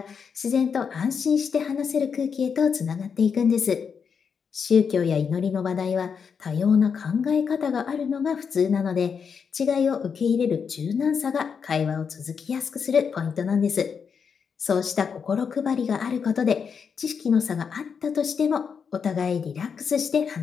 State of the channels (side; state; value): right; quieter; 6.4 dB